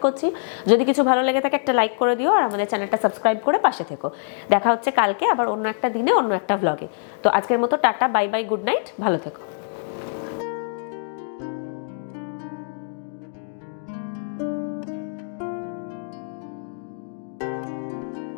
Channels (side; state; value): right; silent; digital silence